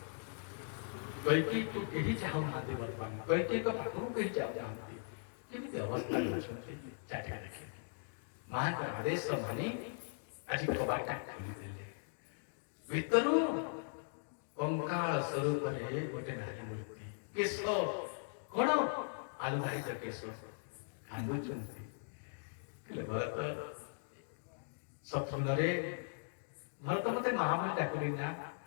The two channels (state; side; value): silent; right; digital silence